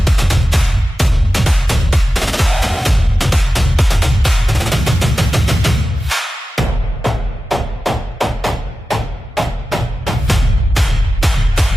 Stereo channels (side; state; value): both; normal; correlation 0.94